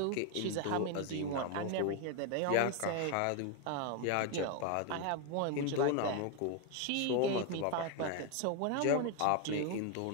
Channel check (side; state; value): both; different; correlation 0.01